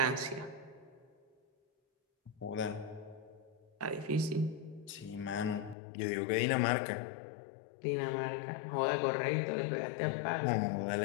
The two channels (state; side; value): drops out; right; at 5.8 s